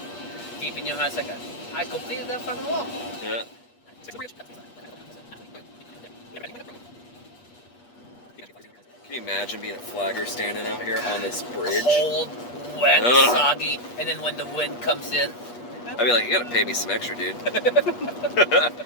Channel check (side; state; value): right; late; 8.3 ms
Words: deep in your heart, it's like, I completed that fucking walk. Yeah. Can you imagine being a flagger standing out here on this bridge? Cold, wet, soggy, and then when the wind comes in. I'd be like, you gotta pay me some extra, dude.